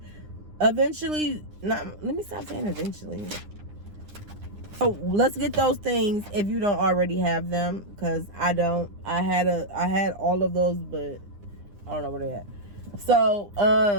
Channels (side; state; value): left; late; 9.8 ms